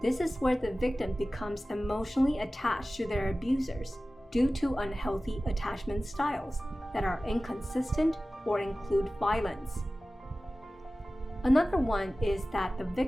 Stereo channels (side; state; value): both; normal; correlation 0.96